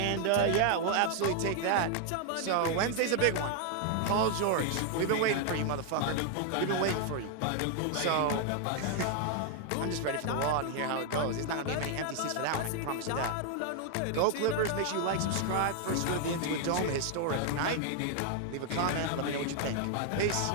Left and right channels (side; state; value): both; different; correlation 0.00